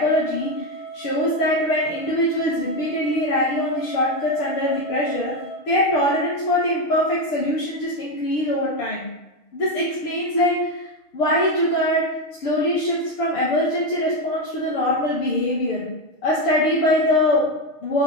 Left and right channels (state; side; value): late; right; 6.5 ms